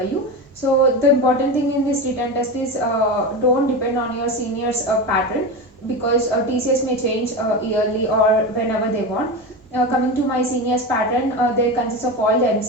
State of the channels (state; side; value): normal; both; correlation 0.22